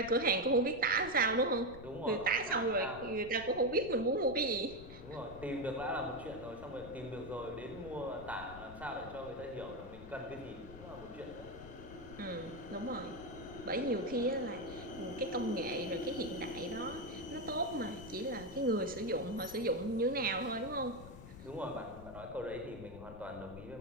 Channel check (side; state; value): left; noise; rumble, 14 dB below the sound